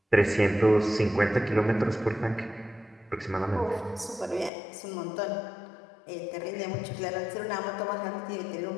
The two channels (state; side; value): drops out; right; at 4.5 s